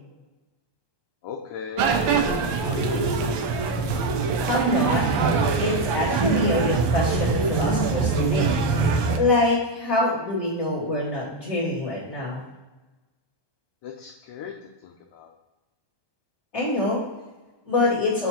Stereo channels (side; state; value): right; late; 1.2 ms